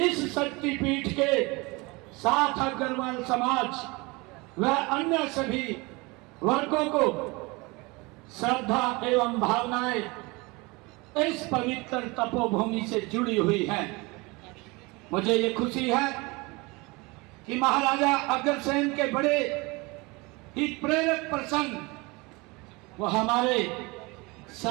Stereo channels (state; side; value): quieter; left; 25.3 dB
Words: शक्तिपीठ के साथ अग्रवाल समाज व अन्य सभी वर्गों को श्रद्धा एवं भावनाएं इस पवित्र तपोभूमि से जुड़ी हुई हैं। मुझे ये खुशी है कि महाराजा अग्रसेन के बड़े ही प्रेरक प्रसंग वो हमारे